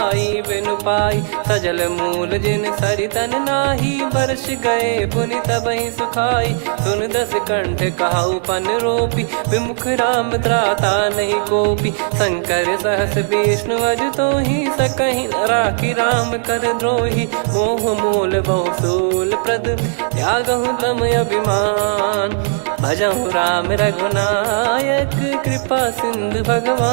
बिनु पाई सजल मूल जिन सरितन नाही वर्ष गए पुनि तबहि सुखाई सुन दस कंठ कहाउ पन रोपी विमुख राम त्राता नहीं कोपी शंकर सहस विष्णु अज तो ही सकहि न राखी राम कर द्रोही मोह मूल बहु सूल प्रद त्यागहु तम अभिमान भजहु राम रघुनायक कृपा सिंधु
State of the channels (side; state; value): left; silent; digital silence